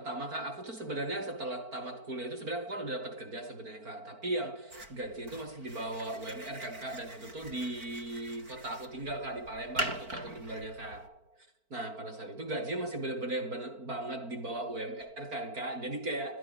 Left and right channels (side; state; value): left; late; 4.5 ms